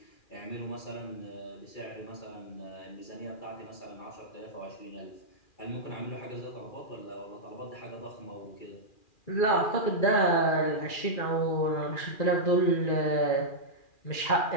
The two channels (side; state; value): right; late; 2.4 ms